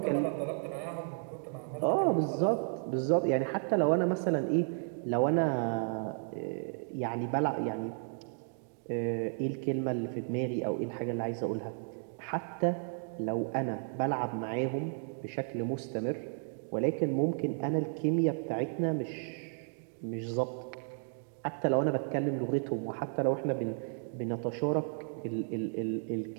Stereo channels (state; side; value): silent; left; 56 dB below the other